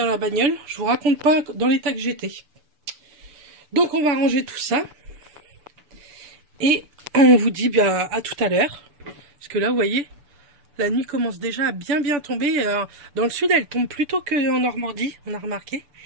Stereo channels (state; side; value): late; left; 6.9 ms